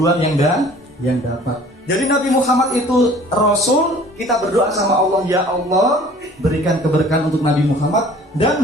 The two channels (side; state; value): both; normal; correlation 0.50